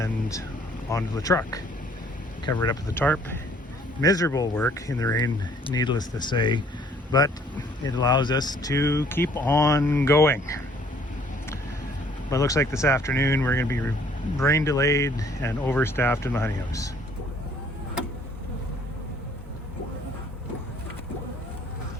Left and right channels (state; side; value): normal; both; correlation 0.60